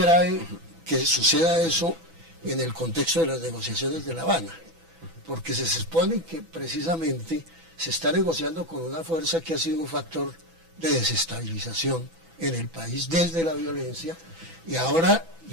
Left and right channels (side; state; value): left; late; 6.1 ms